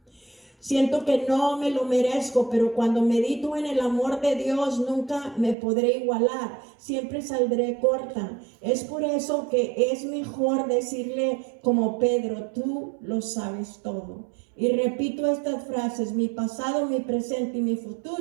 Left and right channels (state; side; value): drops out; left; at 5.6 s